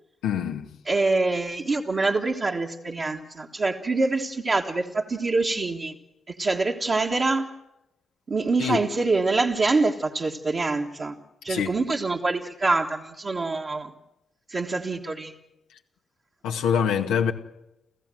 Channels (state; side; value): normal; both; correlation 0.87